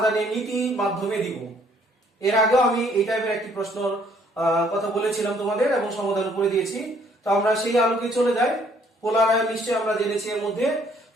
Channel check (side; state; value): both; normal; correlation 0.63